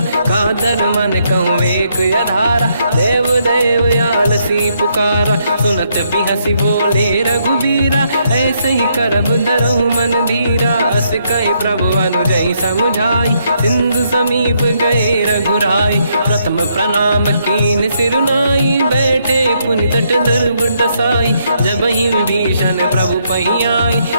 कादर मन कहूँ एक अधारा देव देव आलसी पुकारा सुनत भी हंसी बोले रघुबीरा ऐसे ही करब धरहु मन धीरा अस कहीं प्रभु अनुजय समझाई सिंधु समीप गए रघुराई प्रथम प्रणाम कीन सिरुनाई बैठे पुनि तट दुर्बुड साई जब ही विभीषण प्रभु पही आई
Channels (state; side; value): inverted; both; correlation -0.74